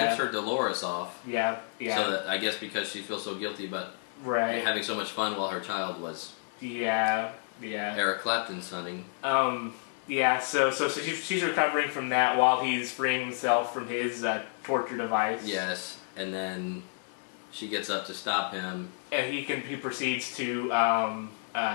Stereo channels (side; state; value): right; silent; digital silence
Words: her Dolores off. Yeah. So that, I guess because she feels so guilty about having so much fun while her child was. Yeah. Eric Clapton's hunting. Yeah, so she's recovering from that while he's freeing himself from his torture device. Yes, and then she gets up to stop him, and he proceeds to